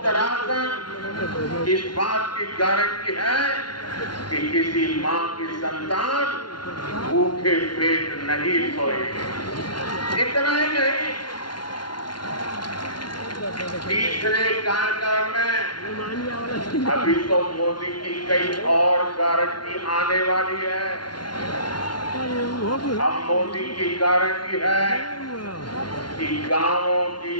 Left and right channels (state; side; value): late; right; 0.71 ms